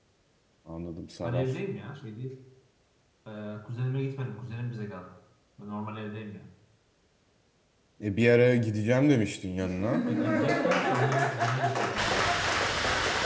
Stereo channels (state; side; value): identical; both; correlation 1.00